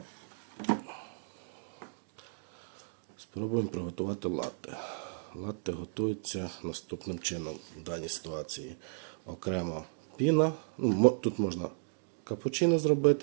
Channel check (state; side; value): silent; left; digital silence